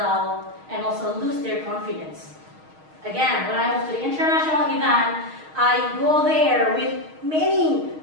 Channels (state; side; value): late; left; 6.4 ms